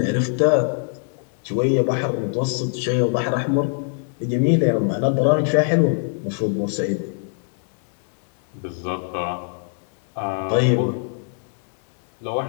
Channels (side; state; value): right; silent; digital silence